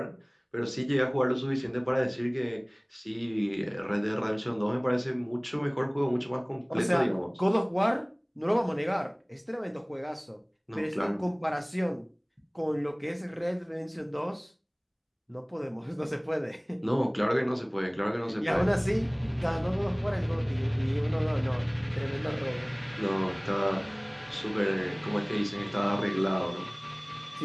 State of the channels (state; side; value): identical; both; correlation 1.00